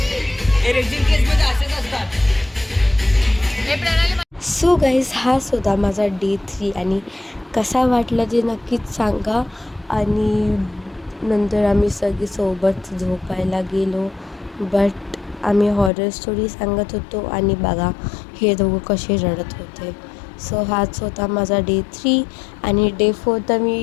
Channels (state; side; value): drops out; right; at 15.9 s